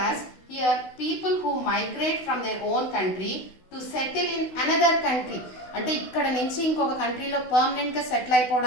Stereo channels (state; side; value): late; right; 16 ms